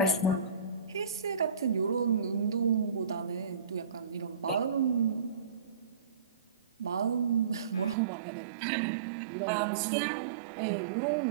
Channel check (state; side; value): drops out; left; at 8.0 s